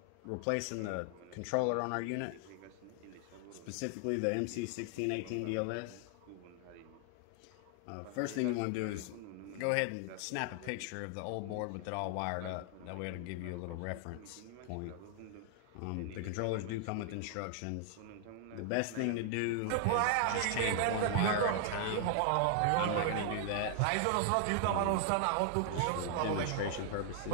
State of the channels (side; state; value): both; different; correlation 0.00